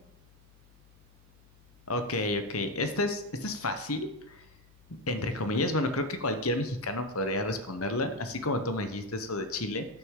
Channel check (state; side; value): noise; left; hum, 26 dB below the sound